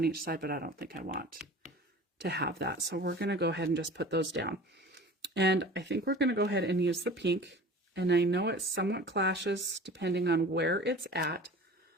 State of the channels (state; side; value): normal; both; correlation 0.41